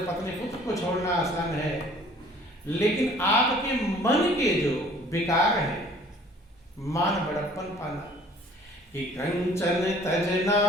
पत्नी पुत्र को छोड़ना आसान है, लेकिन आपके मन के जो विकार है, मान बड़प्पन पाना, कि कंचन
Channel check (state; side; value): normal; both; correlation 0.53